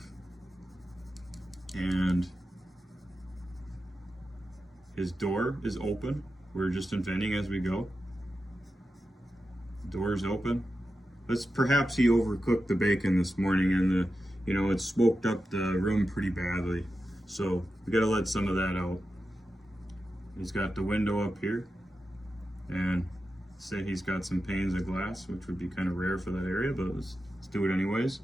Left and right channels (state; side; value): normal; both; correlation 0.90